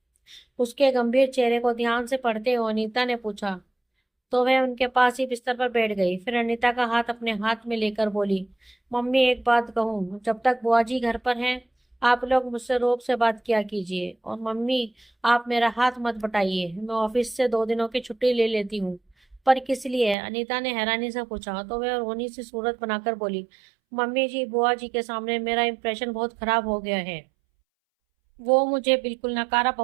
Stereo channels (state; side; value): drops out; left; at 20.2 s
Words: उसके गंभीर चेहरे को ध्यान से पढ़ते हुए अनीता ने पूछा। तो वह उनके पास ही बिस्तर पर बैठ गई। फिर अनीता का हाथ अपने हाथ में लेकर बोली, मम्मी एक बात कहूँ, जब तक बुआ जी घर पर हैं आप लोग मुझसे रोक से बात किया कीजिए। और मम्मी, आप मेरा हाथ मत बटाइए, मैं ऑफिस से 2 दिनों की छुट्टी ले लेती हूँ। पर किस लिए? अनीता ने हैरानी से पूछा तो वह रोनी सी सूरत बनाकर बोली, मम्मी जी, बुआ जी के सामने मेरा इंप्रेशन बहुत खराब हो गया है। वो मुझे बिल्कुल नकारा